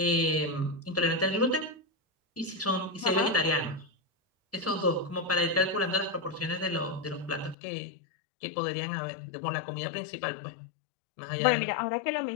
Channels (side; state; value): right; drops out; at 7.6 s